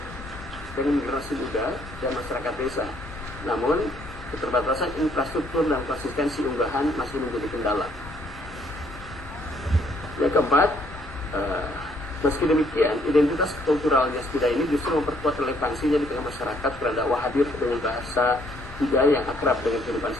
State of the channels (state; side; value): normal; both; correlation 0.66